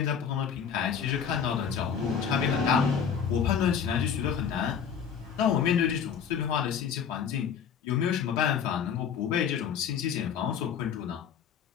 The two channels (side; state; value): right; quieter; 7.6 dB